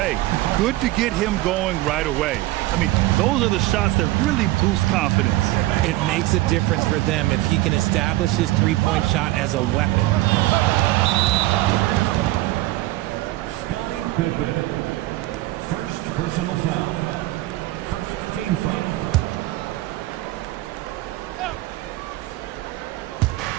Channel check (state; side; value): quieter; left; 17.6 dB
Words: good to get him going right away. I mean, those are the shots that really boost confidence. It makes a difference for them if he can establish his three-point shot as a weapon. First personal foul. First team foul.